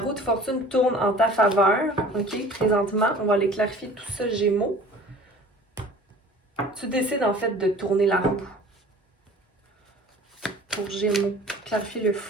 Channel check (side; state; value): both; normal; correlation 0.46